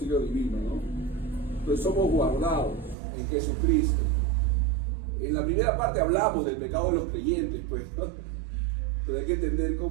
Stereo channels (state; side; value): drops out; left; at 3.0 s